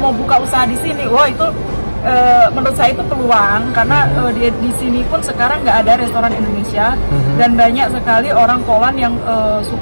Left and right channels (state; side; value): inverted; both; correlation -1.00